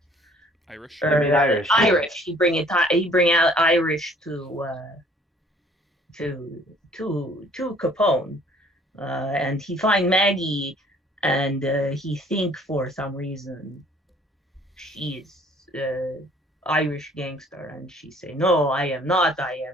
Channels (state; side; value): normal; both; correlation 0.57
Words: Irish. Irish. Irish. He bring out Irish to Capone. And he find Maggie, and he think for some reason she is Irish gangster, and she say, no, I am not, I